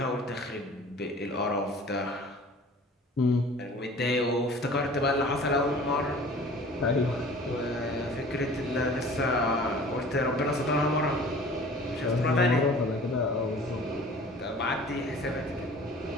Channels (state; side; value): normal; both; correlation 0.46